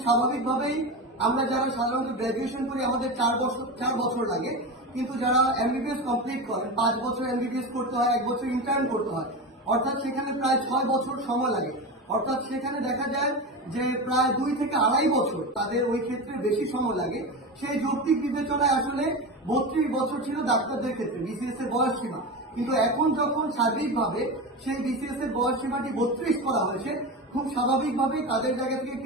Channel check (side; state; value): both; normal; correlation 0.22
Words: স্বাভাবিকভাবেই আমরা যারা সাধারণত গ্র্যাজুয়েশন করি আমাদের 4 বছর লাগে, কিন্তু যারা এমবিবিএস কমপ্লিট করেন 5 বছর এমবিবিএস করতে হয়, 1 বছর ইন্টার্ন করতে হয়, অর্থাৎ সেখানে প্রায় 6 বছর সময় লাগে। অর্থাৎ সেখানে দেখা যায় যে প্রায় 2 থেকে 2.5 বছর তাদের ওই ক্ষেত্রে বেশি সময় লাগে। সেই যৌক্তিক বিবেচনায় আসলে 32 বছর ছিল ডাক্তারদের ক্ষেত্রে বিসিএস এর বয়স সীমা, কিন্তু এখন যখন সার্বিকভাবে সেই বিসিএস এর বয়স সীমাটি 32 করা হয়েছে, খুব স্বাভাবিকভাবেই তাদের জায়গা থেকে